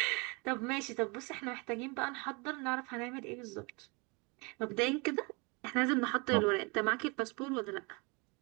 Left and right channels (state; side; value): quieter; left; 29.4 dB